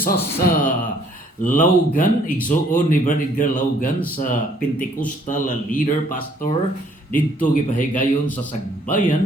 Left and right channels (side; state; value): both; normal; correlation 0.62